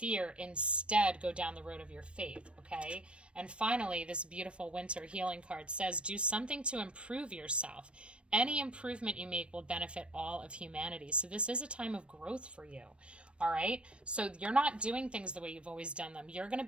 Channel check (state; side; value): late; left; 0.059 ms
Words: Instead, go down the road of your faith, okay? And finally, this beautiful winter healing card says, do something to improve yourself. Any improvement you make will benefit all of humanity. So this is a time of growth for you. All right. So you're not doing things the way you've always done them. You're going to